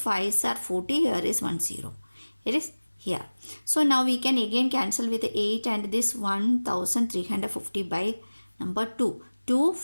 are 40. Here is 1 0. It is here. So now we can again cancel with 8 and this 1350 by number 2. 2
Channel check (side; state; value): both; inverted; correlation -1.00